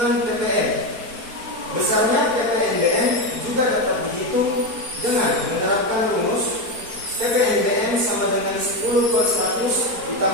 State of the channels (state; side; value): late; left; 4.5 ms